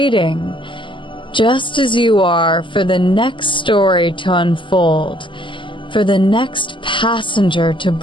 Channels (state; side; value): late; right; 0.24 ms